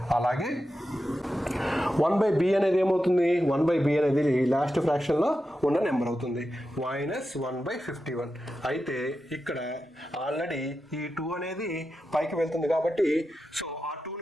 అలాగే 1/b అనేది ఏమవుతుంది, 1/b అనేది లాస్ట్ ఫ్రాక్షన్లో ఉన్న నెంబర్ అవుతుంది, -1/51. అయితే ఇక్కడ ఆల్రెడీ ఈ 2 అనేది పైకి వెళ్తుంది కాబట్టి సో ఆ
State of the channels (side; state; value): both; normal; correlation 0.90